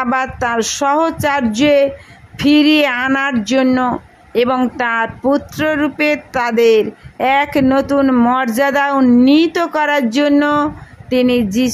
আবার তার সহচর্যে ফিরিয়ে আনার জন্য এবং তার পুত্ররূপে তাদের এক নতুন মর্যাদা উন্নীত করার জন্য তিনি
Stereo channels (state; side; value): identical; both; correlation 1.00